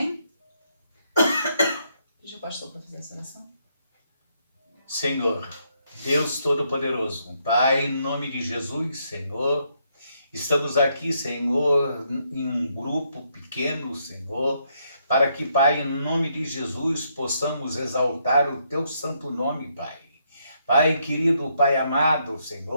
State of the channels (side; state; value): both; inverted; correlation -0.75